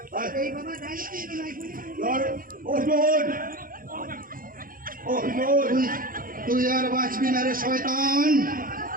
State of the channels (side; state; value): left; late; 0.41 ms